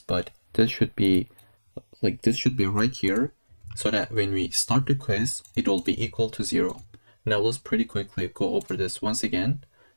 but this should be right here, so that when we start the quiz, it will be equal to 0. Now let's pretty quickly go over this once again.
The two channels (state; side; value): inverted; both; correlation -1.00